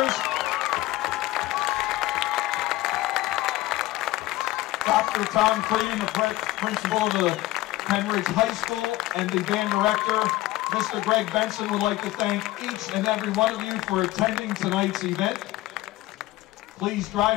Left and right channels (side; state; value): right; quieter; 17.5 dB